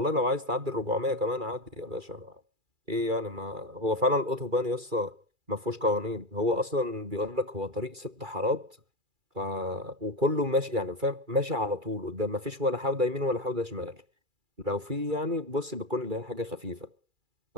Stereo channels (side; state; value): left; late; 2.3 ms